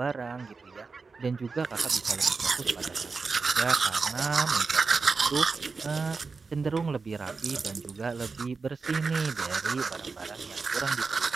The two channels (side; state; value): left; quieter; 4.5 dB